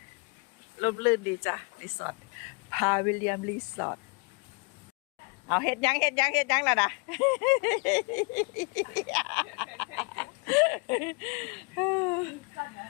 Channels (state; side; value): quieter; right; 32.2 dB